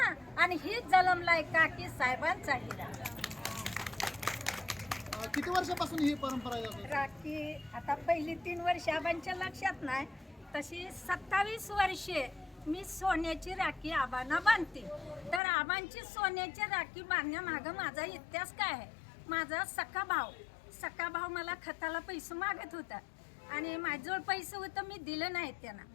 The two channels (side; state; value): right; drops out; at 15.4 s